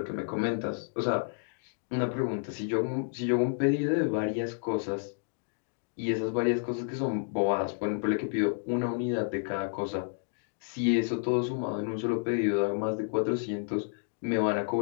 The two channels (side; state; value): right; silent; digital silence